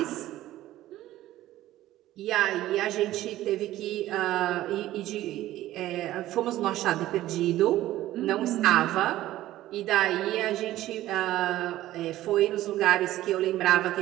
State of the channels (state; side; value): quieter; left; 14.8 dB